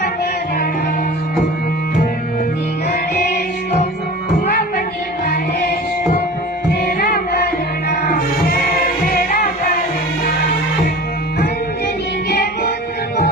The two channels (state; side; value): normal; both; correlation 0.38